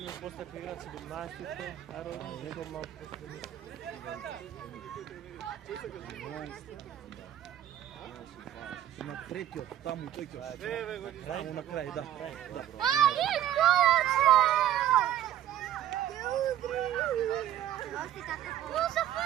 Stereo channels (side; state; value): left; quieter; 11.7 dB